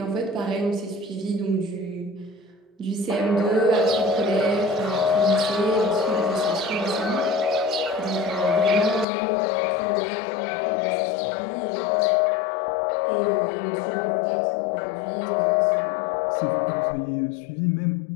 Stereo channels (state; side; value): drops out; right; at 9.1 s